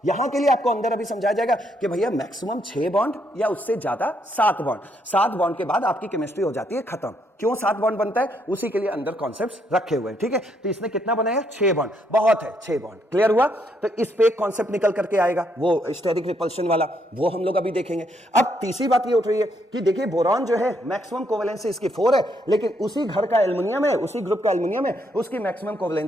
यहां के लिए आपको अंदर अभी समझाया जाएगा कि भैया मैक्सिमम 6 बॉन्ड या उससे ज्यादा 7 बॉन्ड, 7 बॉन्ड के बाद आपकी केमिस्ट्री हो जाती है खत्म। क्यों 7 बॉन्ड बनता है, उसी के लिए अंदर कॉन्सेप्ट्स रखे हुए हैं, ठीक है। तो इसने कितना बनाया, 6 बॉन्ड, बहुत है 6 बॉन्ड, क्लियर हुआ। तो इस पे एक कॉन्सेप्ट निकल करके आएगा, वो स्टेरिक रिपल्शन वाला, वो हम लोग अभी देखेंगे। अब तीसरी बात ये उठ रही है कि देखिए बोरॉन जो है मैक्सिमम कोवेलेंसी इसकी 4 है, लेकिन उसी घर का एल्युमिनियम है, उसी ग्रुप का एल्युमिनियम है, उसकी मैक्सिमम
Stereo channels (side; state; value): both; normal; correlation 0.74